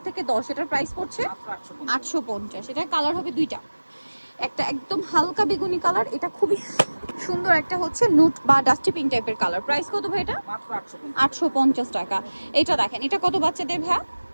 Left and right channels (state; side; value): inverted; both; correlation -1.00